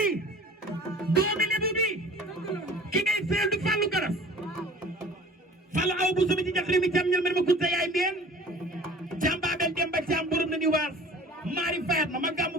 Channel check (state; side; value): normal; both; correlation 0.45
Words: doomi lebu bi ki ngay seel du Fallou Garas Fallou aw bu sumi ci jaxri mi cam ñal mer ma kunta yaay mbeen cam baabel dem ba cam borom na ni waas maari fayat ma gàmmu